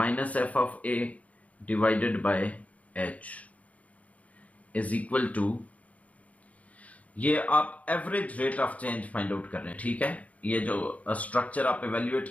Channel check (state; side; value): late; right; 0.068 ms